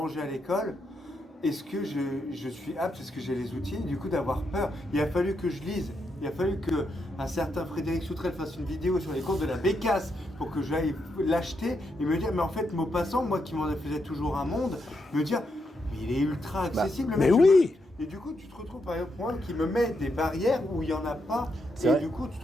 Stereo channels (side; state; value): both; normal; correlation 0.81